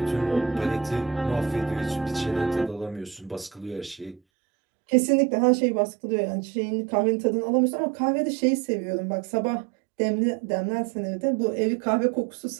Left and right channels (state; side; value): drops out; left; at 4.2 s